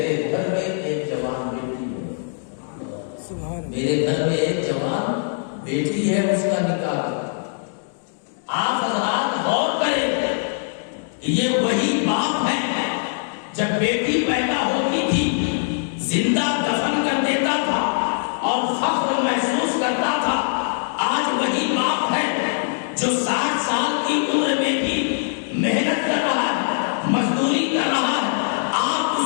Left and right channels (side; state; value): right; silent; digital silence